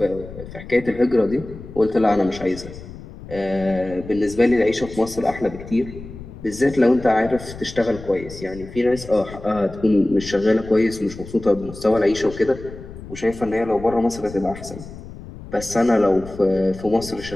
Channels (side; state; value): left; noise; rumble, 14 dB below the sound